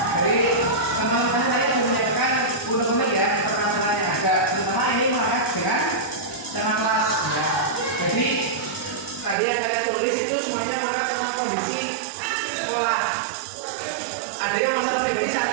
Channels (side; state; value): left; drops out; at 9.3 s